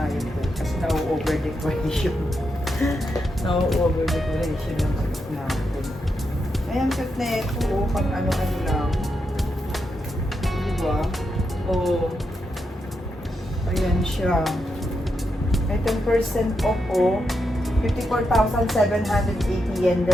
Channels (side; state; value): both; normal; correlation 0.84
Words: yun, oh. Kasi na-over decoration. Na-over decoration yung cute natin. Ayan, cute na ito, oh. Pang ano-ano lang. Diba? Oh. Ayan siya. May 10% off, oh. 54,780 yen,